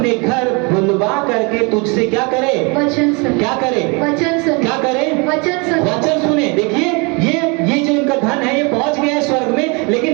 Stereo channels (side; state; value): left; quieter; 30.6 dB